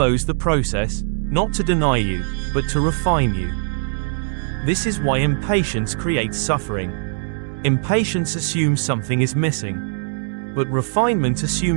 the process, not to deny you, but to refine you. This is why impatience creates suffering. Impatience assumes something is missing. But refinement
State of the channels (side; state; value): left; silent; digital silence